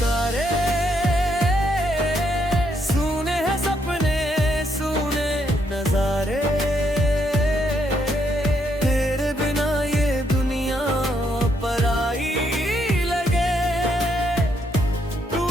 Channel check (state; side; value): normal; both; correlation 0.75